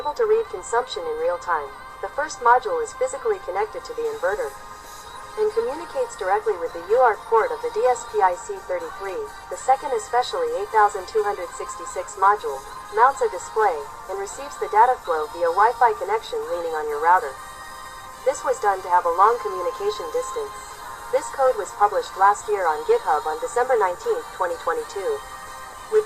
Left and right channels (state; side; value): identical; both; correlation 1.00